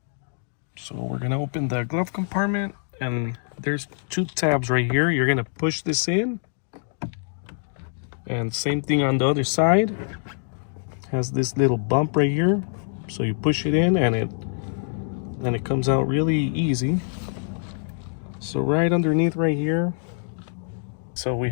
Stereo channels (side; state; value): right; silent; digital silence